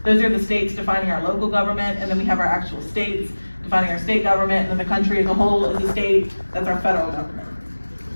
Those are the states defining our local government, and then we have our actual states defining our state government, and then the country as a whole is a state. That's our federal government.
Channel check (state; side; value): inverted; both; correlation -1.00